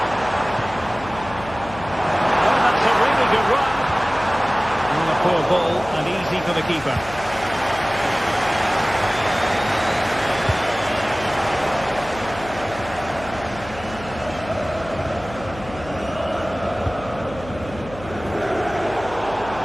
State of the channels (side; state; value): left; noise; hum, 15 dB below the sound